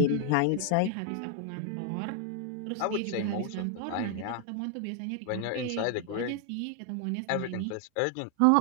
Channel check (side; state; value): both; different; correlation 0.00